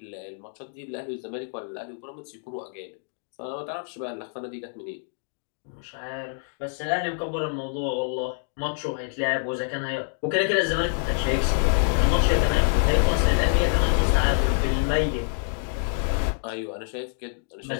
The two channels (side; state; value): right; silent; 61 dB below the other